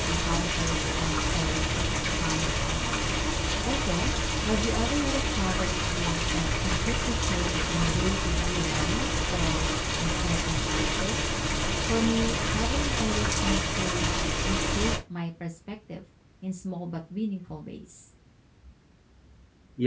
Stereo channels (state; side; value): identical; both; correlation 1.00